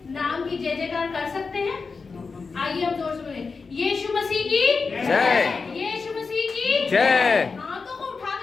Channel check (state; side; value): quieter; right; 4.7 dB